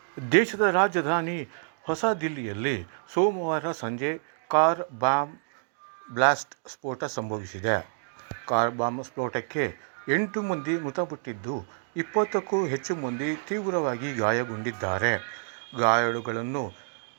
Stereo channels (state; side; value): silent; left; digital silence